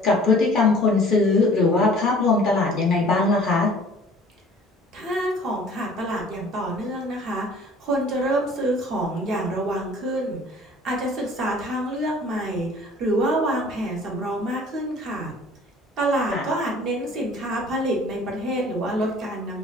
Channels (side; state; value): both; normal; correlation 0.50